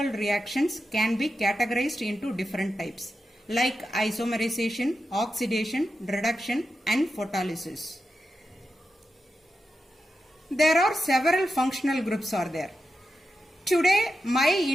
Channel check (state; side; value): normal; both; correlation 0.89